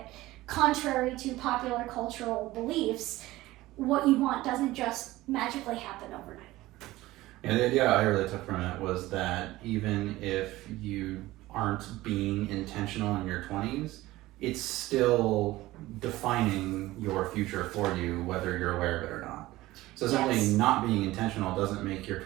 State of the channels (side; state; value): left; quieter; 17.7 dB